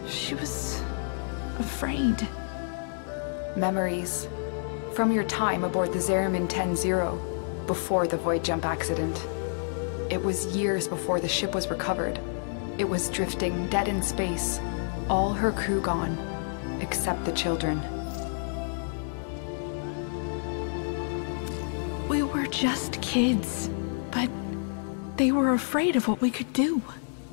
She was... afraid. Memories. From your time aboard the Zariman 10-0, before the void jump accident. It was years before the ship was recovered. It was drifting dead in space. All her crew gone, except the children. We were just kids, but they were afraid of what we could do.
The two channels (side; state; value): right; silent; digital silence